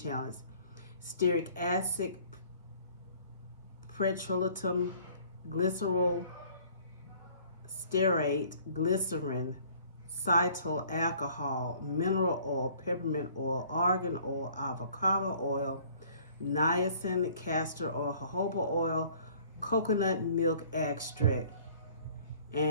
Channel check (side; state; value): both; inverted; correlation -0.55